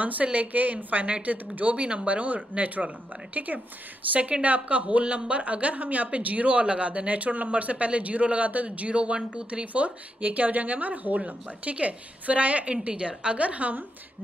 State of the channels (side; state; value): both; normal; correlation 0.83